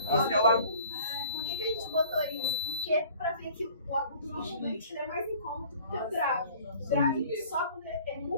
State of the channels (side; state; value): both; inverted; correlation -0.50